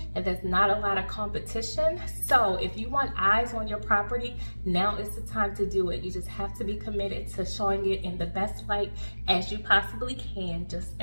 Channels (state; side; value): inverted; both; correlation -1.00